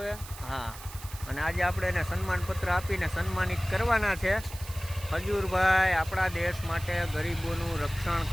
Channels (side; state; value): right; noise; hiss, 15 dB below the sound